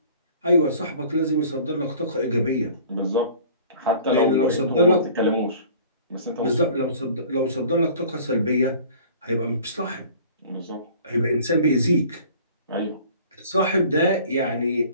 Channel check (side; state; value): both; inverted; correlation -0.48